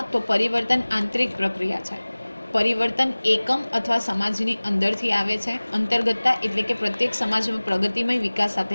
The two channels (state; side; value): inverted; both; correlation -1.00